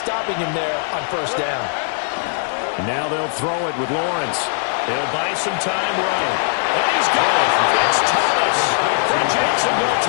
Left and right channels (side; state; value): right; silent; digital silence